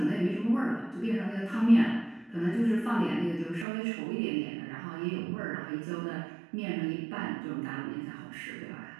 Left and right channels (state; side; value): drops out; left; at 3.7 s